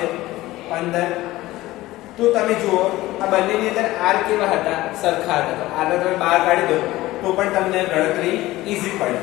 15. તો તમે જુઓ આ બંનેની અંદર r કેવા હતા સરખા હતા. r ને તમે બહાર કાઢી દો તો પણ તમને ગણતરી ઈઝી પડે.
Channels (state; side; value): quieter; right; 17.5 dB